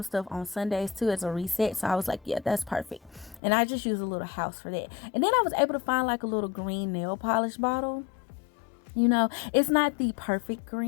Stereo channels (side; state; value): right; drops out; at 3.4 s